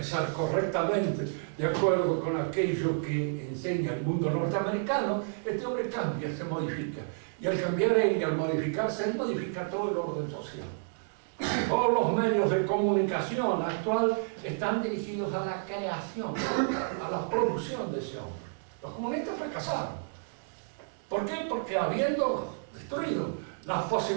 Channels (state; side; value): silent; left; digital silence